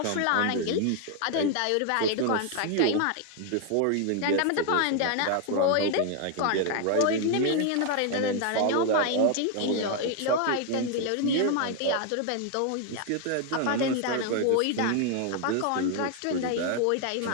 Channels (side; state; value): both; different; correlation 0.00